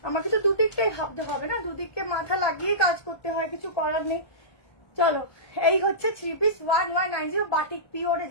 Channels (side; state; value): right; late; 1.2 ms